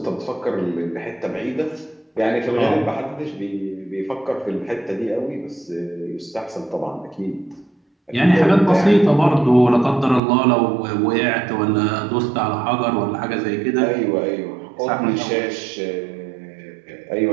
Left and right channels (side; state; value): left; drops out; at 10.2 s